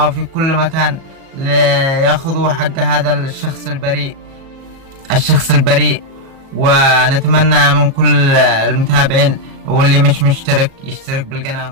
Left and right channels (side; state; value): left; late; 37 ms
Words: وفي كل مكان ليأخذوا حق هذا الشخص البريء. ونتمنى من كل المتابعين واللي مش مشترك يشترك